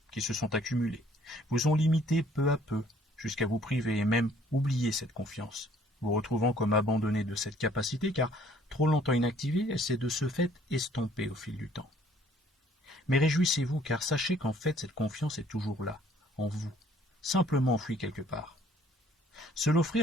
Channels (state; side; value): normal; both; correlation 0.59